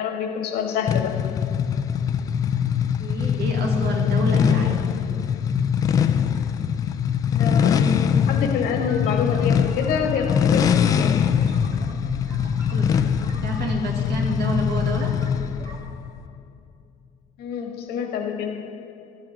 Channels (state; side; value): quieter; right; 6.6 dB